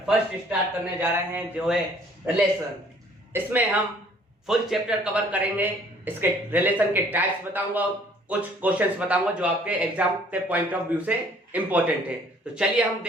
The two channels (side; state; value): both; normal; correlation 0.57